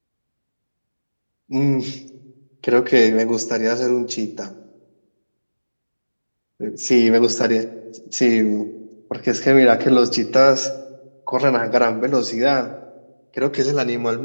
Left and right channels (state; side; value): inverted; both; correlation -1.00